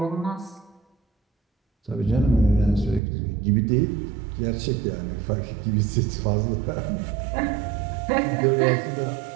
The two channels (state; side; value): drops out; left; at 3.0 s